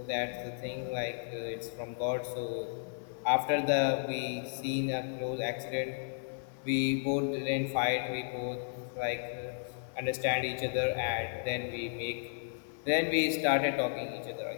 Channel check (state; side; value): silent; right; digital silence